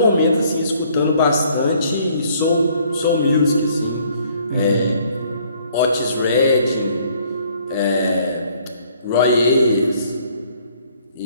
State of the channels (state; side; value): inverted; both; correlation -0.62